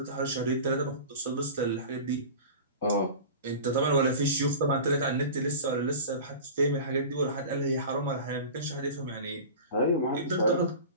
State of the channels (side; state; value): both; inverted; correlation -0.35